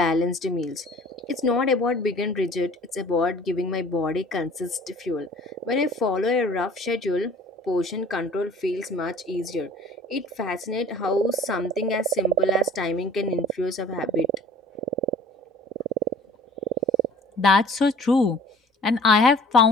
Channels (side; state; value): both; normal; correlation 0.48